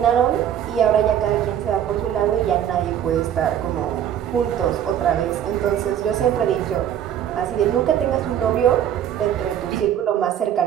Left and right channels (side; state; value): left; quieter; 10.1 dB